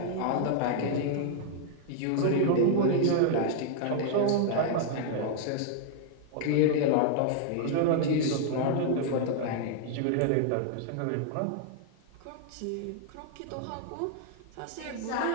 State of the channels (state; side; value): different; both; correlation 0.00